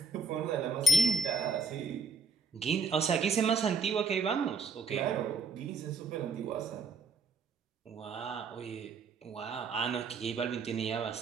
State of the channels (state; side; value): quieter; left; 4.1 dB